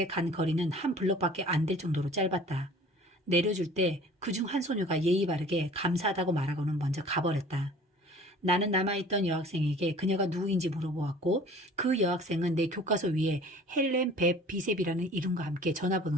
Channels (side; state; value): both; normal; correlation 0.47